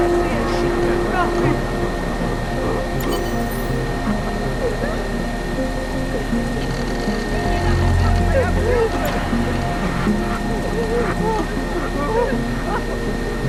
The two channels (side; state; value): both; identical; correlation 1.00